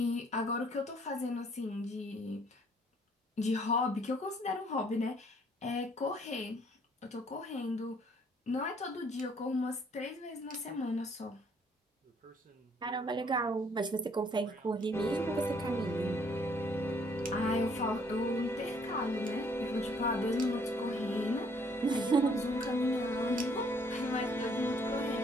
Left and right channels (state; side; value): normal; both; correlation 0.63